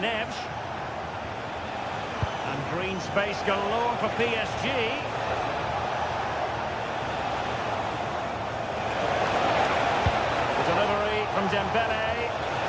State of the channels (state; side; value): identical; both; correlation 1.00